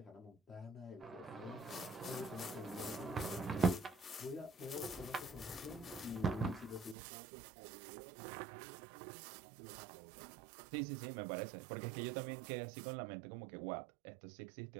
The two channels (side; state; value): left; drops out; at 7.0 s